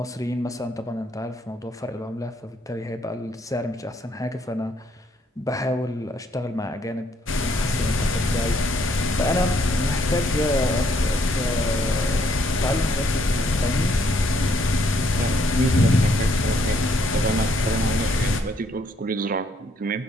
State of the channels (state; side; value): normal; both; correlation 0.69